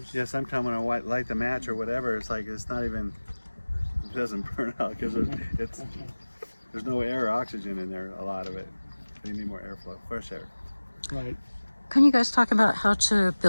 Yeah, sometimes when I light the match or whatever, it's like it's not even. It doesn't burn out because there's no air or oxygen in there. A lot of it. So you need more airflow, fresh air. right. Can you guys talk about how to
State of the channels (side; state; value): both; inverted; correlation -1.00